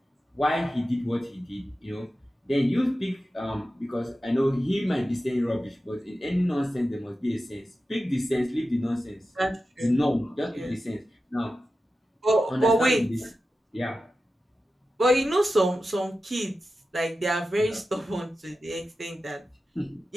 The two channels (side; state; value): both; normal; correlation 0.93